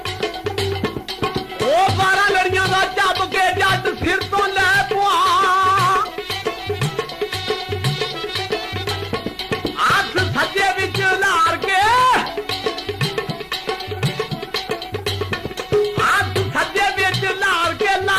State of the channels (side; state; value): both; identical; correlation 1.00